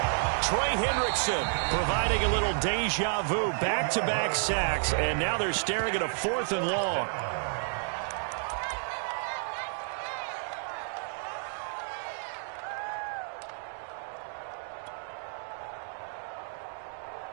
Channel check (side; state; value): left; silent; digital silence